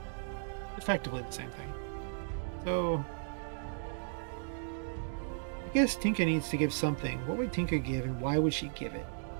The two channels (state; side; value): silent; left; digital silence